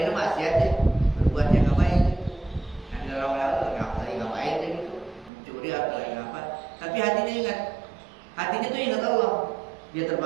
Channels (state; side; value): drops out; left; at 5.3 s